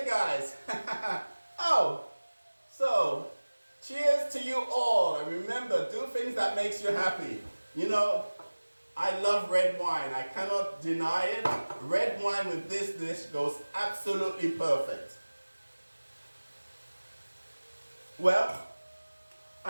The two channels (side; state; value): both; inverted; correlation -1.00